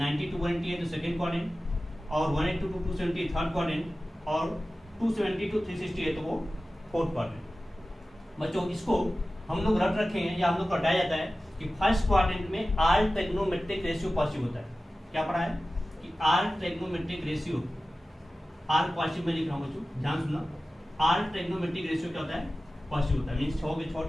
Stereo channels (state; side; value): normal; both; correlation 0.96